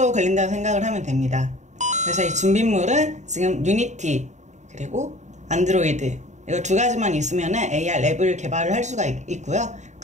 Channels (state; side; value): late; left; 0.34 ms